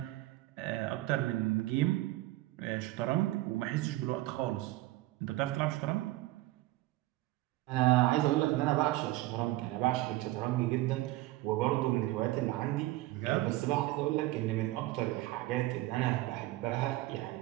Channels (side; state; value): left; quieter; 17.7 dB